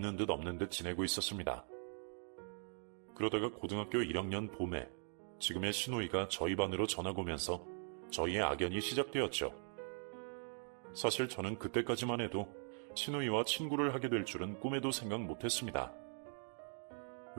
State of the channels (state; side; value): silent; left; 50 dB below the other